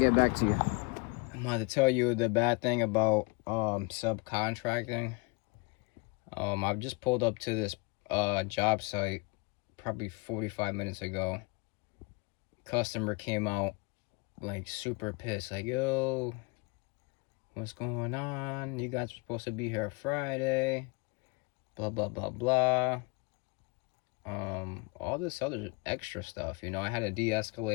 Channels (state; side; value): quieter; right; 28.6 dB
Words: back to you. I'm going to tell you the bad thing about subcontracting. I've just pulled up to this job site probably 45 minutes ago. Customer came out like super pissed, like, yo, what's going on? You guys were supposed to be here Friday, blah blah blah blah. All this other extra stuff, you know. I had to